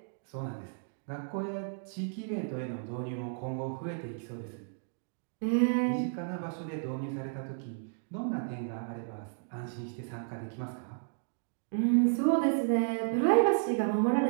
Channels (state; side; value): silent; left; digital silence